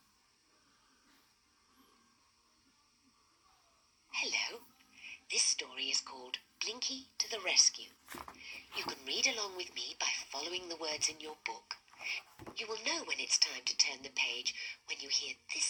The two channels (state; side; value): identical; both; correlation 1.00